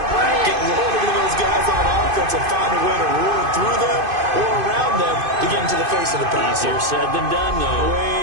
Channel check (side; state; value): left; late; 2.5 ms